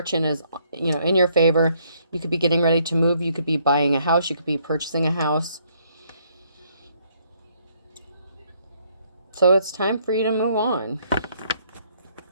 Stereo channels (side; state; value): both; inverted; correlation -0.69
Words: is, you know, in your favor. You could be getting ready to move. You could be buying a house. You could be purchasing a house. So it's time for you to move on.